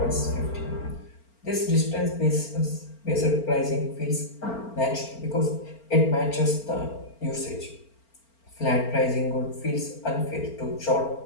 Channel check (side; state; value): right; late; 4.4 ms